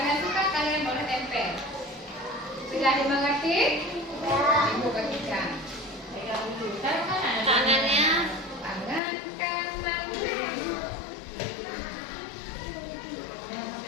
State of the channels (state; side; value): drops out; right; at 9.0 s